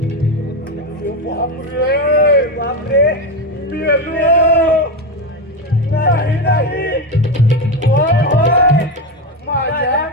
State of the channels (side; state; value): both; normal; correlation 0.14